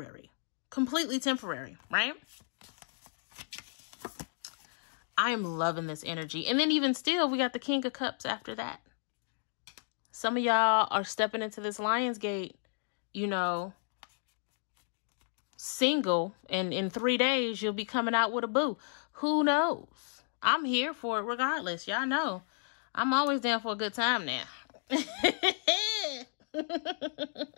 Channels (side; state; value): right; silent; digital silence